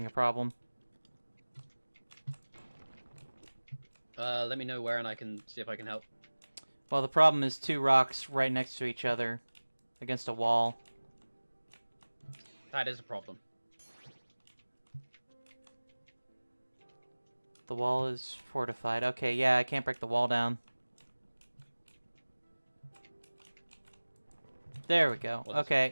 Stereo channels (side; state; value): both; inverted; correlation -1.00